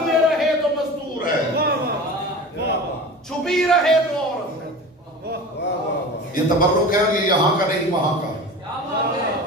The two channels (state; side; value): normal; both; correlation 0.34